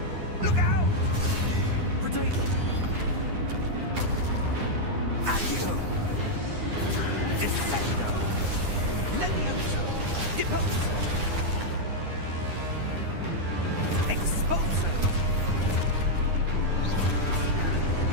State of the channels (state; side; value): late; left; 9.8 ms